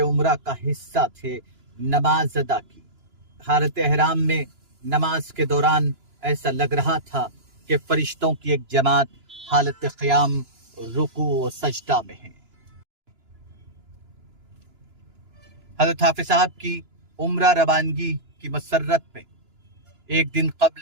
उम्रा का हिस्सा थे नमाज अदा की। हालत एहराम में नमाज के दौरान ऐसा लग रहा था कि फरिश्तों की एक जमात हालत क़याम, रुकू और सजदा में है। हज़रत हाफिज साहब की उम्रा रवानगी की मसरत में एक दिन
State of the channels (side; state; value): left; late; 2.9 ms